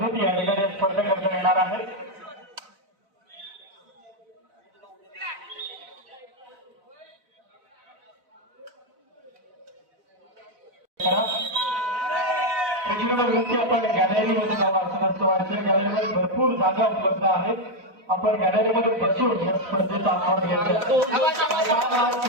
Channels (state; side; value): late; left; 4.0 ms